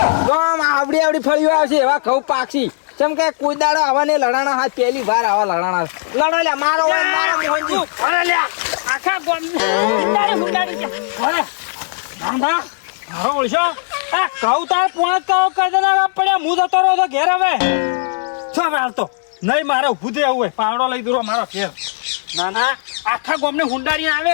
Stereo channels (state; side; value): silent; right; digital silence